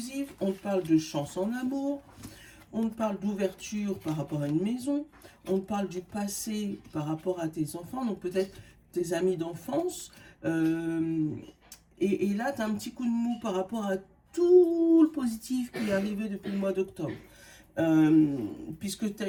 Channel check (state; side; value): identical; both; correlation 1.00